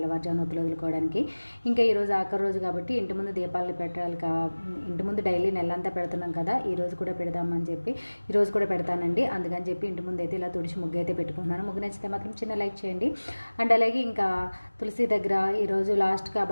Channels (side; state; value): both; inverted; correlation -1.00